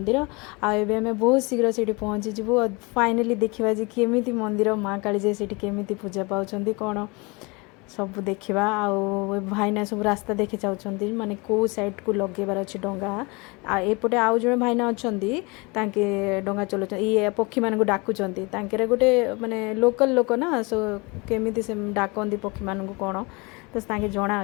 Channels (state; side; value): quieter; right; 27.6 dB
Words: ଆଉ ଏବେ ଆମେ ବହୁତ ଶୀଘ୍ର ସେଇଠି ପହଞ୍ଚିଯିବୁ। ଫାଇନାଲି ଦେଖିବା ଯେ କେମିତି ମନ୍ଦିର, ମା କାଳିଜାଇ ସେଇଠି କେମିତି ପୂଜା ପାଉଛନ୍ତି କ'ଣ ସବୁ ଦେଖିବା। ଆଉ ଭାଇନା ସବୁ ରାସ୍ତା ଦେଖି ଯାଉଛନ୍ତି, ମାନେ କେଉଁ ସାଇଡ଼୍କୁ ଲଗେଇବାର ଅଛି ଡଙ୍ଗା। ଆଉ ଏପଟେ ଆଉ ଜଣେ ଭାଇନା ଅଛନ୍ତି, ତାଙ୍କେ ଡଙ୍ଗା ଚଲାଉଛନ୍ତି, ଇଏ ପକ୍ଷୀମାନଙ୍କୁ ଡାକୁଛନ୍ତି। ତାଙ୍କର ଗୋଟେ ମାନେ ଲୋକାଲ୍ ଲୋକ ନା, ସୋ କେମିତି ସେ ଡାକନ୍ତି ପକ୍ଷୀମାନଙ୍କୁ କ'ଣ, ତ ତାଙ୍କେ